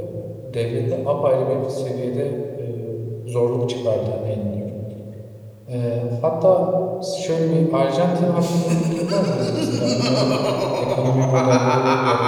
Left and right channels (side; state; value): both; identical; correlation 1.00